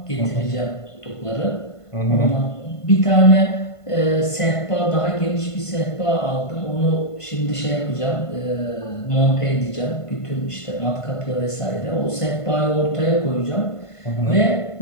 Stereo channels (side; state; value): right; late; 1.5 ms